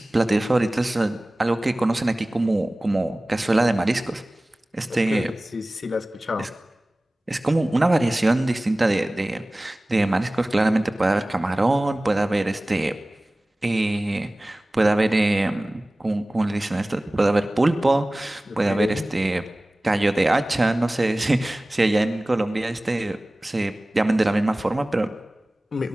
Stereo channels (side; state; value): both; normal; correlation 0.98